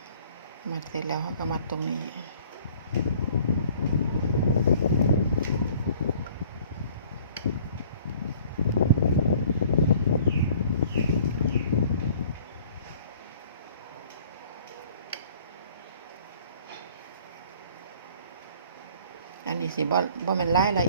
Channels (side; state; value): both; inverted; correlation -0.54